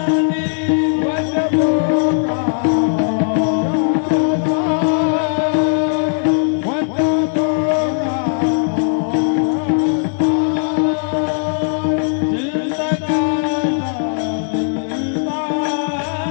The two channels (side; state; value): right; silent; digital silence